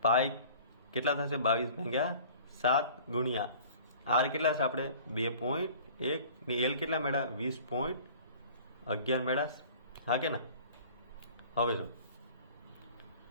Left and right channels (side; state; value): both; inverted; correlation -0.47